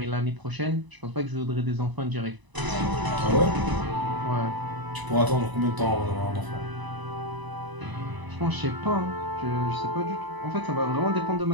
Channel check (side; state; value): left; late; 1.0 ms